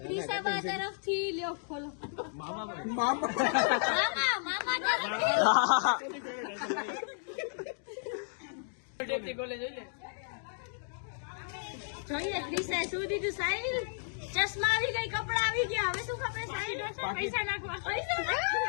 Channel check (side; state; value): right; silent; digital silence